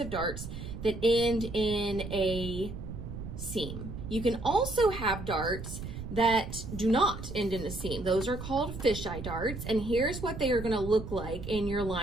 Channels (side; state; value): right; noise; rumble, 8 dB below the sound